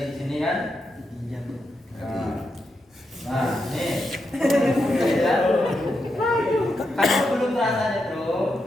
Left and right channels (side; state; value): both; normal; correlation 0.84